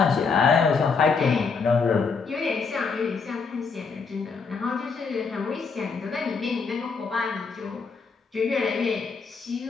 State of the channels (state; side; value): quieter; right; 5.1 dB